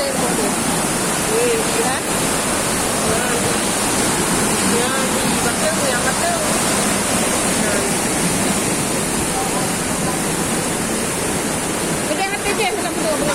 dia. Lihat. Yang betul. Yang hati je hendak betul.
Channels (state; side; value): identical; both; correlation 1.00